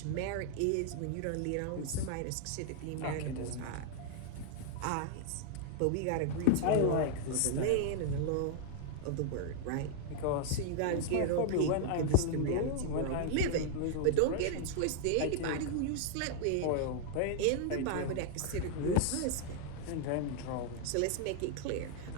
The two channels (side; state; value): both; different; correlation 0.00